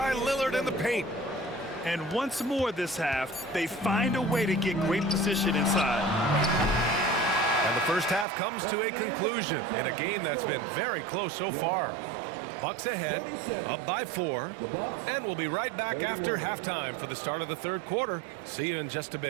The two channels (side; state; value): left; drops out; at 8.2 s